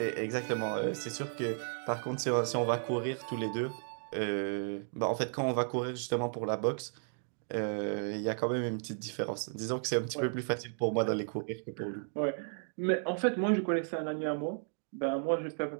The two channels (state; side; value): silent; left; digital silence